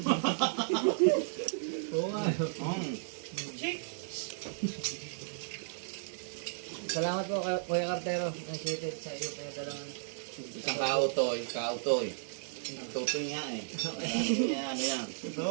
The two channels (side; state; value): left; silent; digital silence